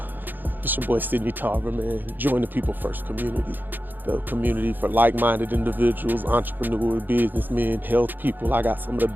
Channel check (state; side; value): late; left; 0.090 ms